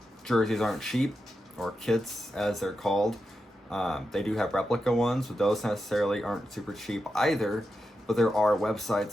jerseys aren't cheap, or kits as they're called. They do have replica ones, but those necessarily aren't super cheap either. But there are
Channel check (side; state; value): both; normal; correlation 0.88